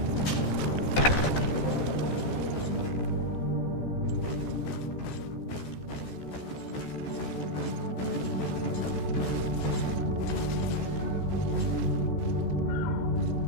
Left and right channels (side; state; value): right; late; 14 ms